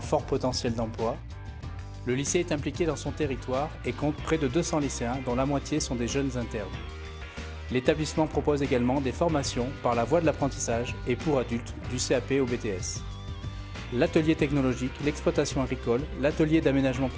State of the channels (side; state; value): both; identical; correlation 1.00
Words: fort potentiel d'emploi. Le lycée est impliqué dans son territoire et compte près de 200 lycéens, dont la moitié sont des jeunes internes. L'établissement propose également des formations par la voie de l'apprentissage et pour adultes du CAP au BTS. L'atelier technologique, l'exploitation agricole, l'atelier d'aménagement